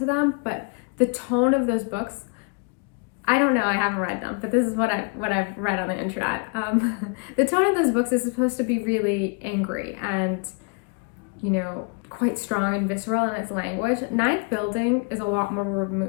them. But the tone of those books, I don't know, I haven't read them, but this is what I've read on the internet. The tone of those books is supposed to be really angry and, quite strong and visceral in its language. Ninth Building is a lot more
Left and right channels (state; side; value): quieter; right; 34.7 dB